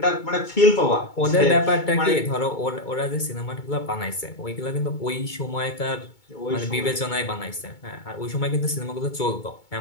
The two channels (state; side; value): late; right; 2.2 ms